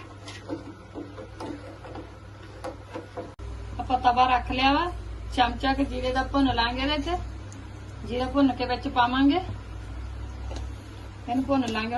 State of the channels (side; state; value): both; identical; correlation 1.00